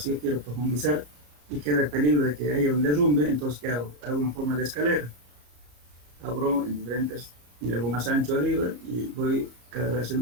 yo quiero profundizar y queda el peligro de que haya un derrumbe, entonces ¿qué hago? Hago una forma de escalera. Abro en diferentes, y hago más ancho arriba y voy cada vez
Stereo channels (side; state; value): left; late; 34 ms